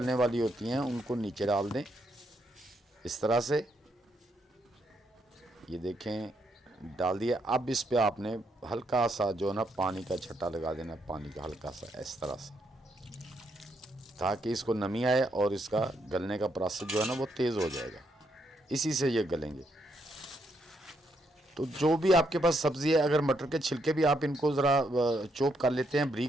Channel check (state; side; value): normal; both; correlation 0.76